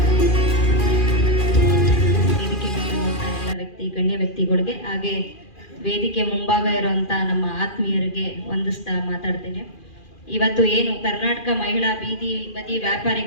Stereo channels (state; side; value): late; right; 2.4 ms